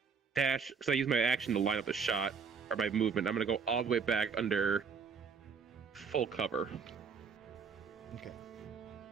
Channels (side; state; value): left; quieter; 5.8 dB